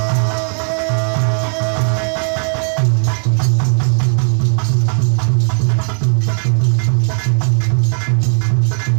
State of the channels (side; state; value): left; silent; 70 dB below the other